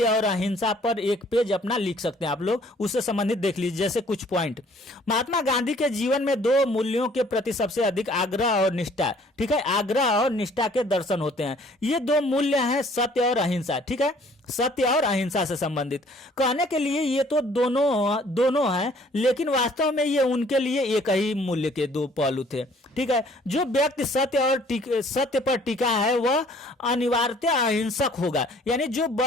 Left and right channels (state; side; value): normal; both; correlation 0.57